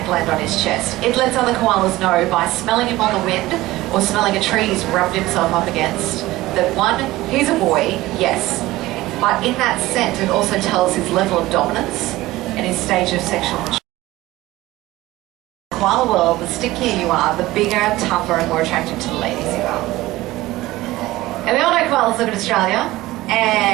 gland on his chest. It lets other koalas know by smelling him on the wind or smelling a tree he's rubbed himself up against that 1, he's a boy, yes, But in that scent, it also tells his level of dominance and his stage of sexual maturity. In the koala world, the stickier you are, the bigger, tougher, and more attractive to the ladies you are. And we all know koalas live in Australia,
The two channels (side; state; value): left; quieter; 17.8 dB